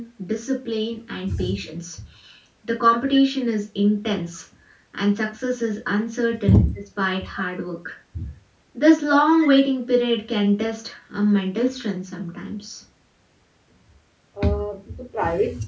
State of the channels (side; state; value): both; identical; correlation 1.00